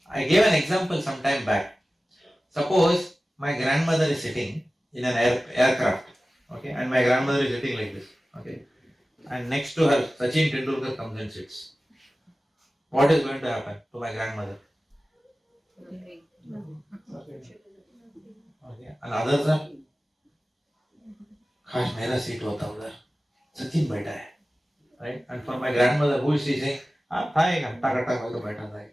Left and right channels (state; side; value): normal; both; correlation 0.96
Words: I gave an example some time back. Suppose my grandmother is sitting in an aircraft, okay, and my grandmother is sitting like this, okay, and next to her Sachin Tendulkar comes and sits. What is going to happen to my grandmother? Okay, and others are, काश मेरा seat होता उधर, सचिन बैठा है, right? And for my grandmother, who is she saying? था एक घंटा घंटा मैं तो बैठा था,